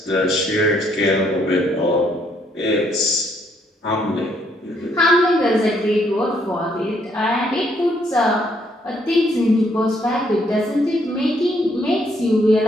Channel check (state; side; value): normal; both; correlation 0.70